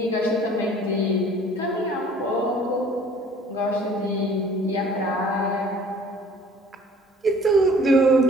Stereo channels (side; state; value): both; normal; correlation 0.52